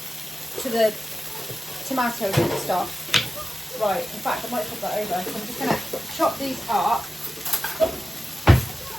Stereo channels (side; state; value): both; normal; correlation 0.94